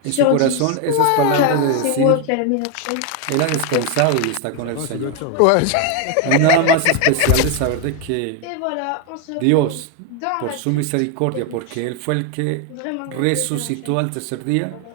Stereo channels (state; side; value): different; both; correlation 0.01